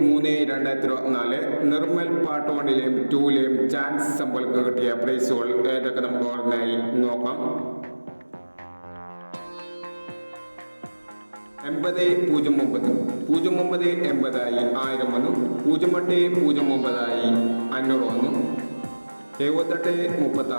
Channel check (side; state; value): both; inverted; correlation -1.00